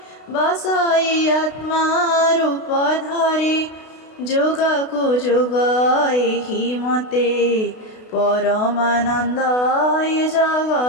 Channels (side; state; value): right; late; 32 ms